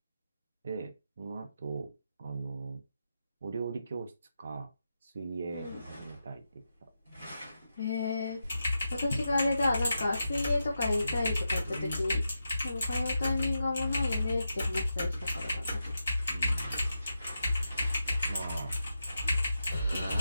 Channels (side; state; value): both; inverted; correlation -0.87